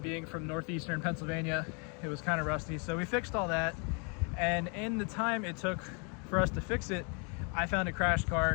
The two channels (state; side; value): quieter; right; 36.3 dB